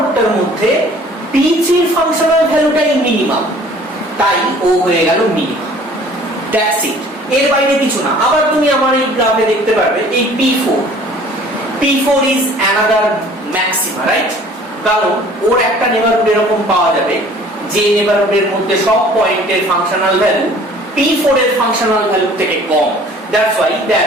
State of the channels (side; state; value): both; normal; correlation 0.51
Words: মধ্যে P3 এর ফাংশনাল ভ্যালুটাই মিনিমাম, তাই ও হয়ে গেল মিনিমাম। দ্যাটস ইট, এর বাইরে কিছু না। আবার তুমি আমার এই গ্রাফে দেখতে পারবে এই P4 is another maxima, right? কারণ ওর একটা নেবারহুড এরকম পাওয়া যাবে যে নেবারহুডের মধ্যে সব পয়েন্টের ফাংশনাল ভ্যালু P4 এর ফাংশনাল ভ্যালু থেকে কম, that's why